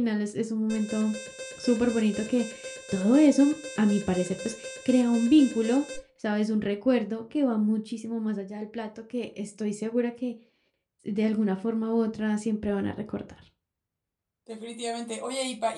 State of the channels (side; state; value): both; identical; correlation 1.00